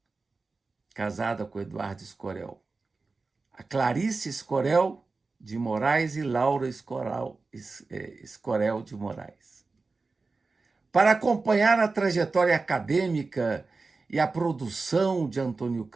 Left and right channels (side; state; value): left; quieter; 3.9 dB